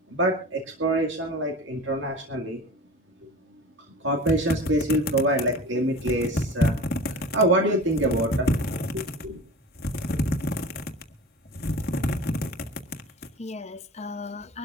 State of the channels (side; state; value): both; normal; correlation 0.37